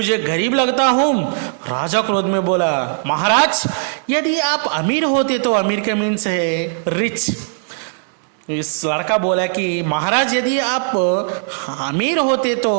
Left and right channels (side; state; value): left; silent; digital silence